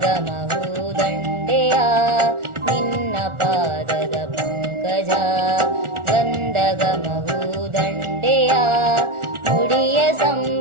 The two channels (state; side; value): late; left; 1.4 ms